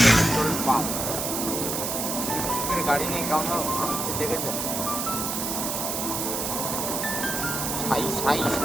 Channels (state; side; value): noise; right; hiss, 2 dB below the sound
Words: গাড়ি নিয়ে কেমন আসছে দেখেছেন, সাই সাই